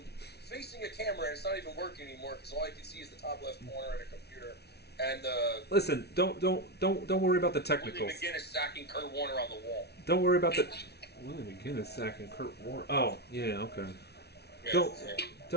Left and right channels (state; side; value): late; right; 0.48 ms